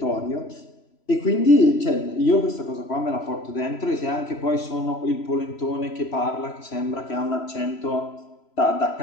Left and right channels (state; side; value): late; right; 3.0 ms